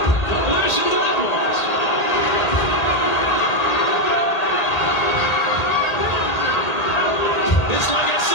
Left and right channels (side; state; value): right; late; 1.8 ms